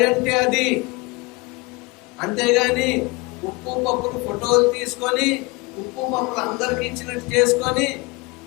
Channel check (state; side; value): quieter; right; 25.4 dB